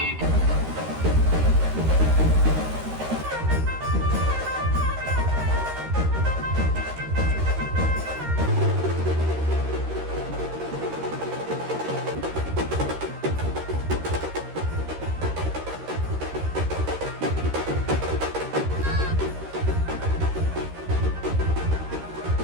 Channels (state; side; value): late; left; 13 ms